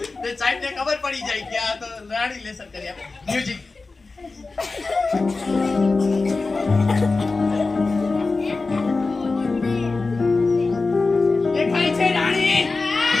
તે સાહેબને ખબર પડી જાય કે આ તો રાણી લેસન કરી આપે. મ્યુઝિક. દેખાય છે રાણી?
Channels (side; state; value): right; quieter; 3.8 dB